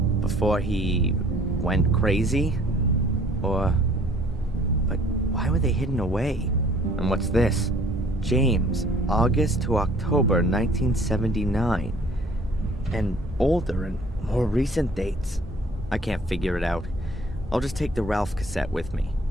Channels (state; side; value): normal; both; correlation 0.56